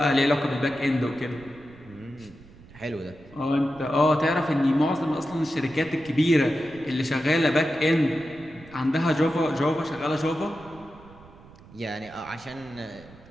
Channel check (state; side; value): noise; right; rumble, 22 dB below the sound